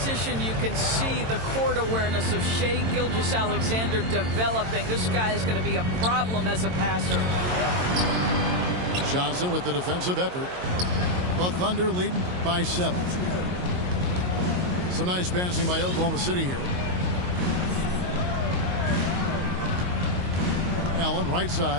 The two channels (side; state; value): left; late; 22 ms